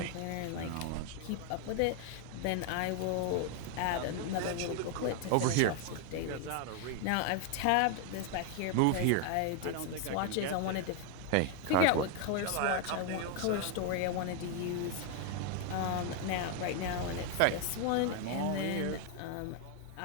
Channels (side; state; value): both; different; correlation 0.01